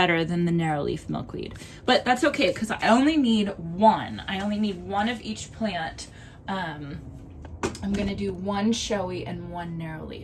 than the narrow leaf milkweed, but that's okay because I only need one. I only need one of each plant. I'm gonna do one showy and one narrow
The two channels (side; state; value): both; identical; correlation 1.00